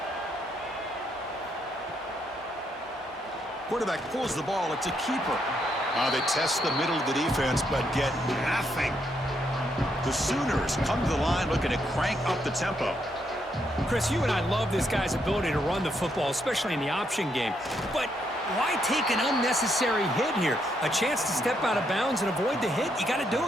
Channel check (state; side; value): normal; both; correlation 0.76